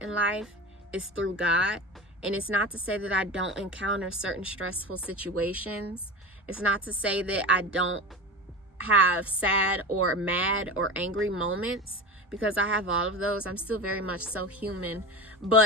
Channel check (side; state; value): both; normal; correlation 0.28